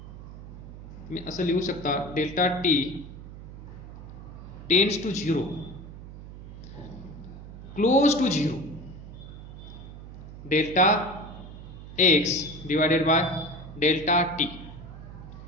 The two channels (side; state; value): right; noise; hum, 13 dB below the sound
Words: मी असं लिहू शकता, delta T tends to zero, close to zero, delta X divided by delta T.